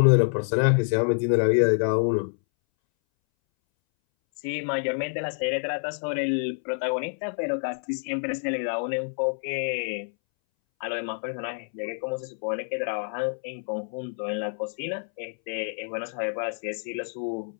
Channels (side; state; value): right; silent; 60 dB below the other